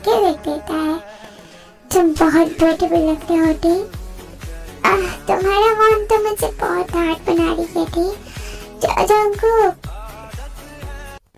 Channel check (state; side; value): identical; both; correlation 1.00